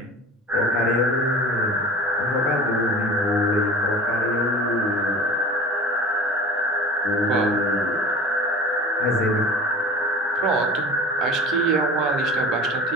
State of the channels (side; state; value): both; normal; correlation 0.38